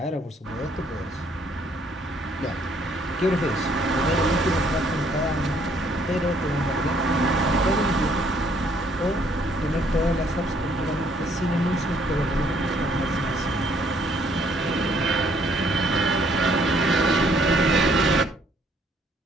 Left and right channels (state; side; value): normal; both; correlation 0.65